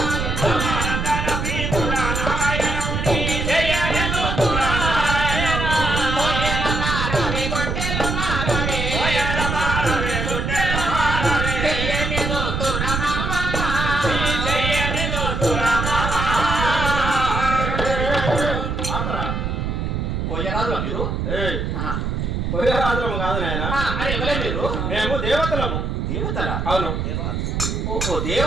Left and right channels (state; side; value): noise; right; rumble, 1 dB below the sound